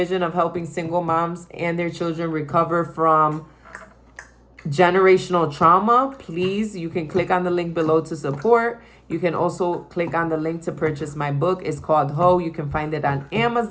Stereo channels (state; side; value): identical; both; correlation 1.00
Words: of helping single moms and their children recover from generational trauma. Please, you can click on the link below to support. You can also click on the link to purchase my book. It's called Ho. You can find it on